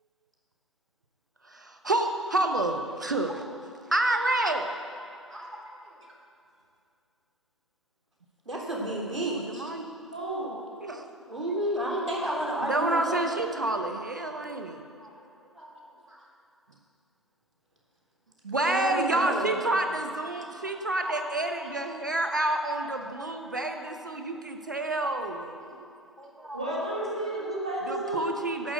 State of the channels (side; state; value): both; normal; correlation 0.45